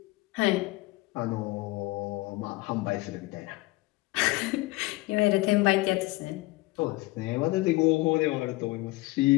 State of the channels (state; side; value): quieter; right; 21.1 dB